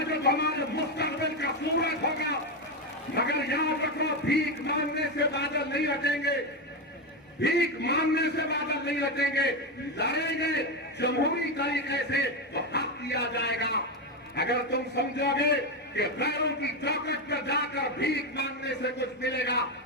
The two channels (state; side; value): normal; both; correlation 0.10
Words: जो हमारे मुस्तकबिल का सूरज होगा, मगर याद रखो भीख मांगने से बादल नहीं हटेंगे, भीख मांगने से बादल नहीं हटेंगे। लड़ेंगे जमहूरी तरीके से तो हक दिया जाएगा। अगर तुम समझोगे कि गैरों की चौकट पर जाकर भीख मांगने से कुछ मिलेगा,